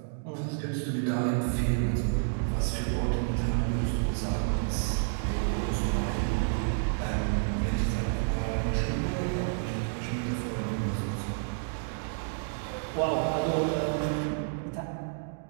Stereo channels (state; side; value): silent; left; digital silence